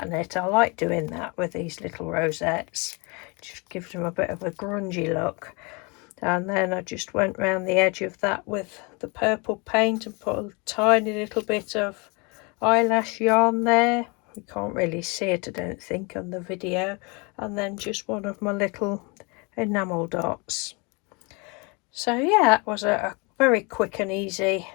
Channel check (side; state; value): right; quieter; 30.0 dB